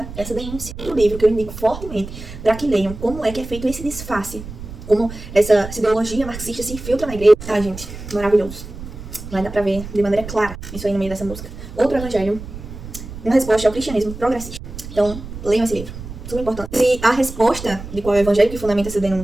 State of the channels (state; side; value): noise; right; rumble, 12 dB below the sound